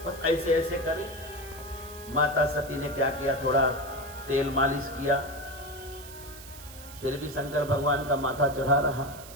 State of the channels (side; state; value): right; noise; hiss, 16 dB below the sound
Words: बस ऐसे ऐसे करे। माता सती ने क्या किया? थोड़ा तेल मालिश किया, फिर भी शंकर भगवान का माथा चढ़ा रहा।